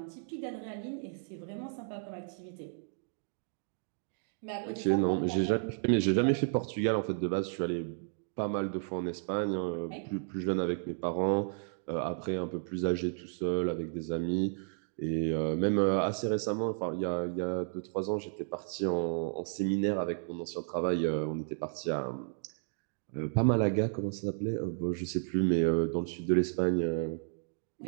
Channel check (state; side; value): silent; left; digital silence